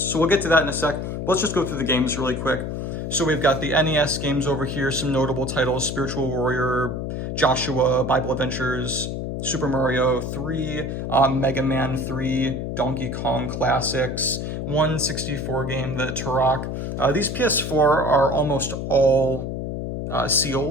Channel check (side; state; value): left; noise; hum, 4 dB below the sound